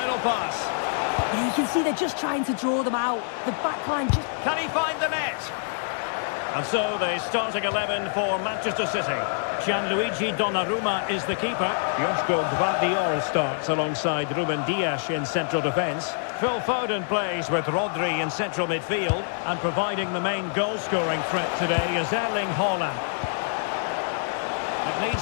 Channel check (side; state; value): right; silent; digital silence